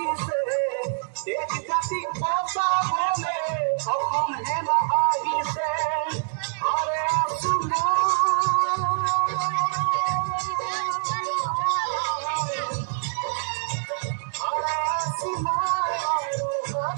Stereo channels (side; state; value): left; silent; digital silence